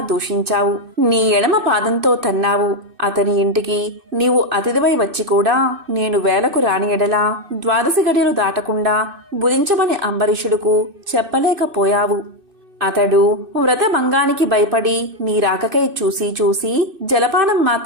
దూషించావు. నీ ఎడమ పాదంతో తన్నావు. అతని ఇంటికి నీవు అతిథివై వచ్చి కూడా నేను వేలకు రాని ఎడలా 12 గడియలు దాటకుండా భుజించమని అంబరీషుడుకు చెప్పలేకపోయావు. అతడు వ్రతభంగానికి భయపడి నీ రాకకై చూసి జలపానం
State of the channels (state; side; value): late; left; 2.6 ms